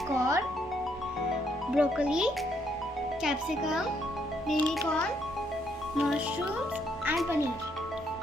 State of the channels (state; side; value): normal; both; correlation 0.72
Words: corn, broccoli, capsicum, baby corn, mushrooms and paneer.